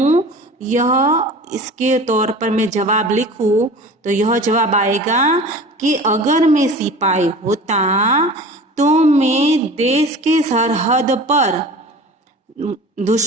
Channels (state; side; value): normal; both; correlation 0.39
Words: यह इसके तौर पर मैं जवाब लिखूं तो यह जवाब आएगा कि अगर मैं सिपाही होता तो मैं देश के सरहद पर